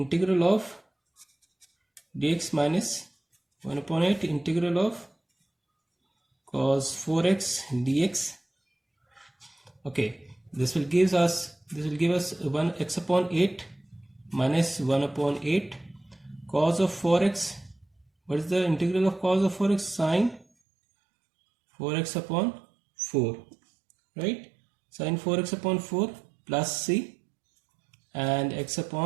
of dx minus 1 upon 8 integral of cos 4x dx. Okay, this will give us 1 x upon 8 minus 1 upon 8 cos of 4x. What is the integral of cos of 4x? Sine 4x upon 4, right? Sine 4x upon 4 plus c, and x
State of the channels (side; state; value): left; drops out; at 20.5 s